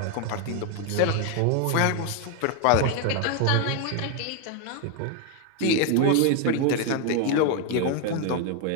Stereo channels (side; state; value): both; different; correlation 0.01